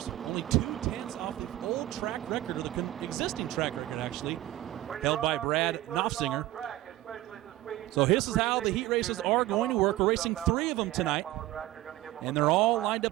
Only 2/10 off the old track record, or the existing track record actually, held by Brad Knopfsinger. So this is how the heat races are going to work. We're racing 3 of them tonight, and they're all lined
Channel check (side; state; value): left; quieter; 15.9 dB